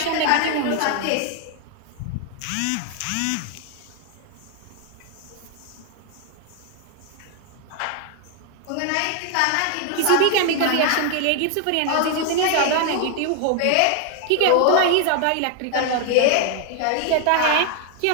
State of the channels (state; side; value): different; both; correlation 0.00